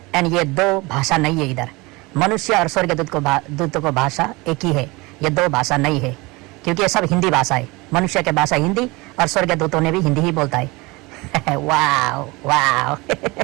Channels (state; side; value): quieter; left; 23.9 dB